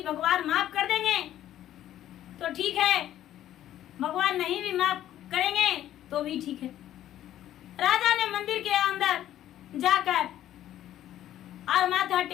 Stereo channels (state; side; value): quieter; right; 12.3 dB